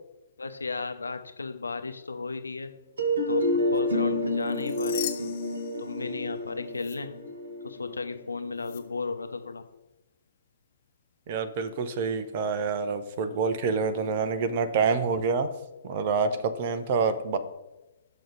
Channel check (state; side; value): inverted; both; correlation -0.41